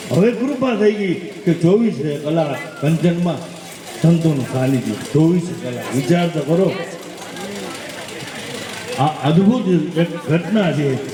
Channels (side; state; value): both; identical; correlation 1.00